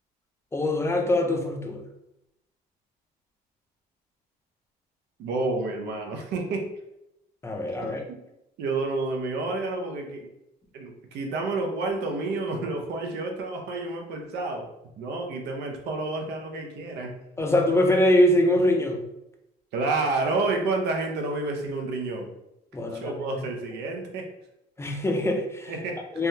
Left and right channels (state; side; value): normal; both; correlation 0.56